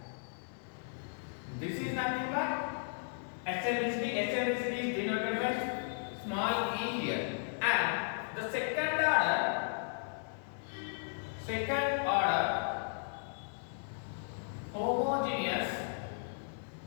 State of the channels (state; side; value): silent; right; 54 dB below the other